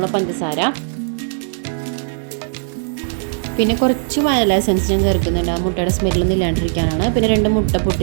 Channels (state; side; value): silent; left; 65 dB below the other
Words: പഞ്ചസാര, പിന്നെ കുറച്ച് വാനില എസൻസ് ഞാൻ ചേർക്കുന്നുണ്ട്, ആ മുട്ടയുടെ സ്മെല്ലൊന്നും ഇല്ലാണ്ടിരിക്കാനാണ്. പിന്നെ 2 മുട്ട